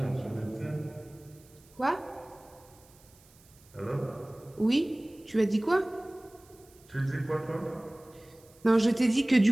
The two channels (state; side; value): noise; right; hiss, 27 dB below the sound